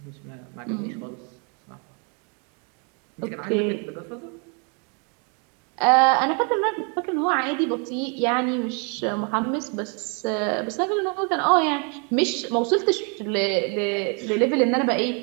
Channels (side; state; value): left; quieter; 36.7 dB